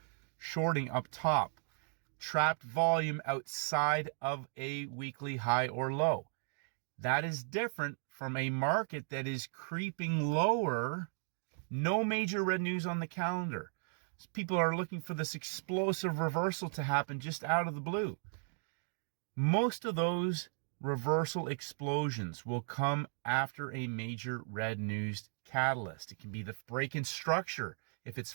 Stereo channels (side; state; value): left; silent; 54 dB below the other